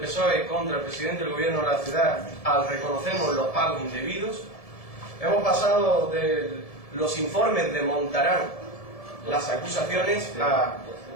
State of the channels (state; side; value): late; right; 1.7 ms